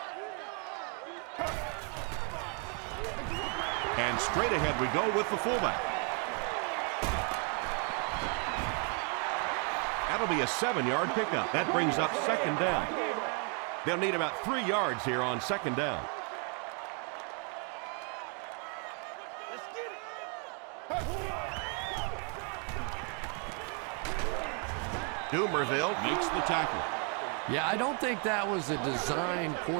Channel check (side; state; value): left; quieter; 38.6 dB